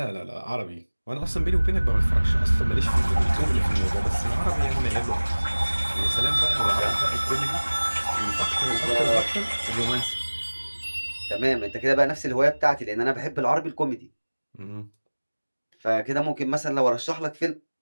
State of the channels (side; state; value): both; inverted; correlation -1.00